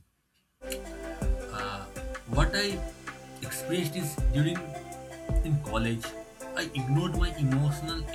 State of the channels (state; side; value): identical; both; correlation 1.00